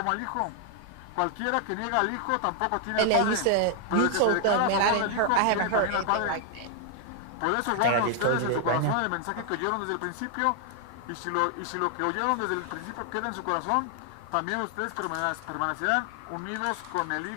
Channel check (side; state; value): both; different; correlation 0.00